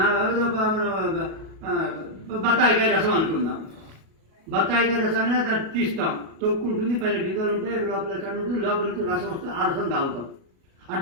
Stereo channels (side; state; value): left; late; 37 ms